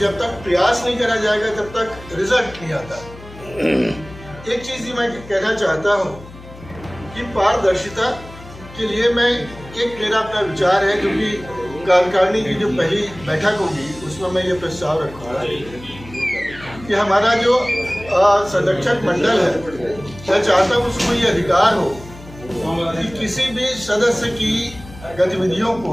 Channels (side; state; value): left; noise; hum, 18 dB below the sound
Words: तक प्रयास नहीं करा जाएगा तब तक रिजल्ट नहीं आता। एक चीज़ ही मैं कहना चाहता हूँ कि पारदर्शिता के लिए मेरा अपना विचार है, जो कि कार्यकारिणी की जो पहली बैठक होगी उसमें मैं ये प्रस्ताव रखूँगा कि हमारा जो संरक्षक मंडल है, मैं चाहता हूँ उसको ये अधिकार हो कि किसी भी सदस्य की गतिविधियों